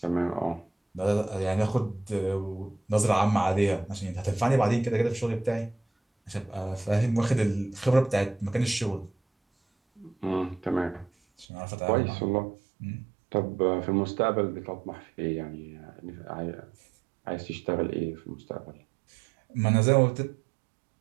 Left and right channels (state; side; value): drops out; left; at 11.5 s